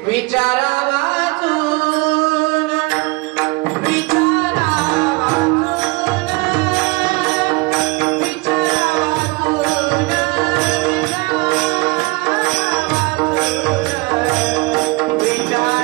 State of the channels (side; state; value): left; quieter; 24.8 dB